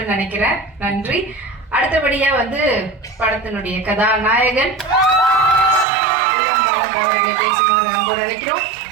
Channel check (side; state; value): left; drops out; at 5.9 s